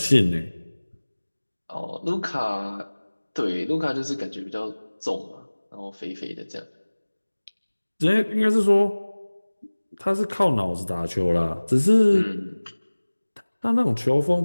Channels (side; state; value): both; inverted; correlation -1.00